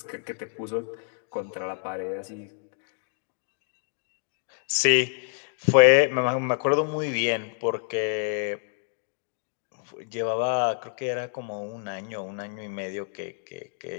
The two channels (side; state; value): right; silent; digital silence